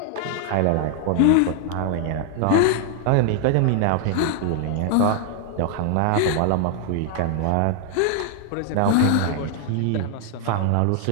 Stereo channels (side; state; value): both; different; correlation 0.00